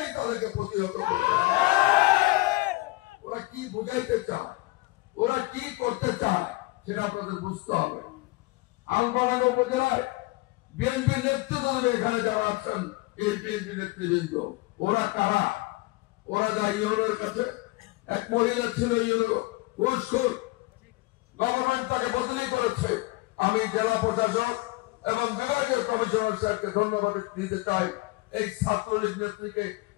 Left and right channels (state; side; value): quieter; right; 22.1 dB